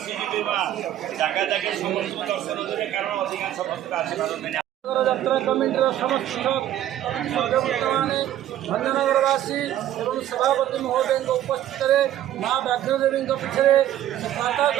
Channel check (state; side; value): quieter; left; 12.3 dB